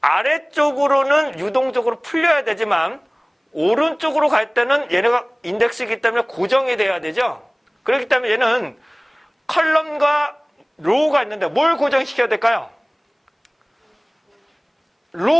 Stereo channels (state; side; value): identical; both; correlation 1.00